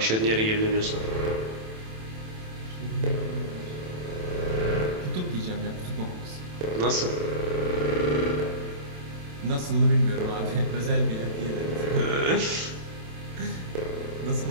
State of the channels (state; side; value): late; left; 27 ms